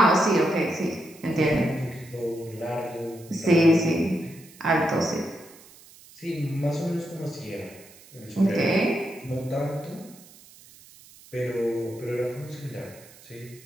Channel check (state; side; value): noise; right; hiss, 23 dB below the sound